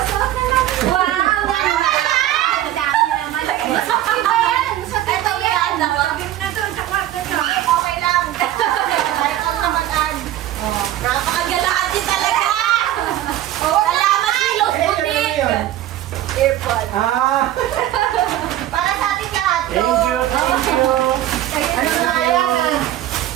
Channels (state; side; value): quieter; left; 13.2 dB